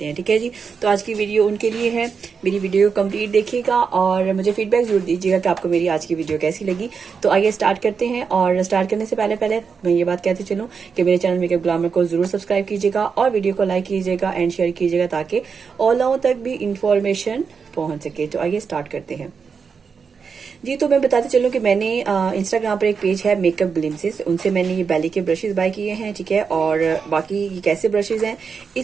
हैं। ठीक है जी, तो आज की वीडियो उनके लिए है। मेरी वीडियो कंप्लीट देखिएगा और मुझे फीडबैक जरूर दीजिएगा कि आपको मेरी आज की वीडियो कैसी लगी। तो आइए स्टार्ट करते हैं। और स्टार्ट करने से पहले मैं ये बात कहते चलूँ कि मेरे चैनल मेकअप ग्लैमर को जरूर सब्सक्राइब कीजिएगा और वीडियो को लाइक कीजिएगा एंड शेयर कीजिएगा ताकि और लोगों तक भी इंफॉर्मेशन पहुंच सके। तो आइए स्टार्ट करते हैं जी। तो मैं बताते चलूँ कि मैंने इंस्टाग्राम पर एक पेज है मेकअप ग्लिम्सेस, उनसे मैंने ये बैली के ब्रशेस बाय किए हैं। ठीक है, और बाकी ये कैसे ब्रशेस हैं,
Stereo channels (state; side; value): quieter; left; 5.8 dB